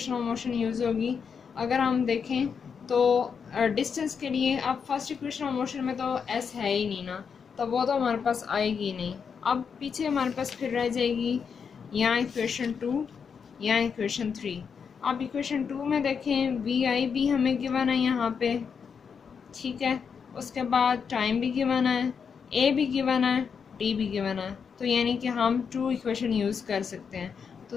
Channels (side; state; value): right; quieter; 6.4 dB